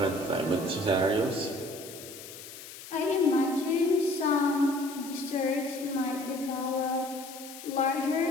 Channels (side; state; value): left; noise; hiss, 14 dB below the sound